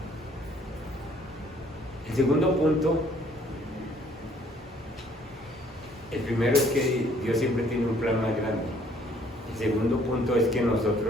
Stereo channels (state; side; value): normal; both; correlation 0.61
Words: El segundo punto, el primero es que Dios siempre tiene un plan más grande. El segundo punto es que